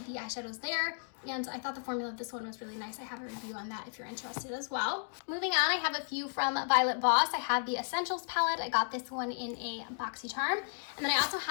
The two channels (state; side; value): silent; right; digital silence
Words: the eyeshadows there, and I thought the formula of this one was really nice. I have a review on that if you're interested as well. Moving on, I have a few from Violet Voss. I have the Essentials palette. I got this one in a BoxyCharm. And then I also